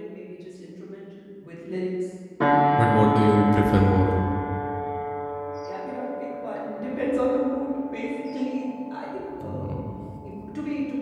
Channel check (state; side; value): identical; both; correlation 1.00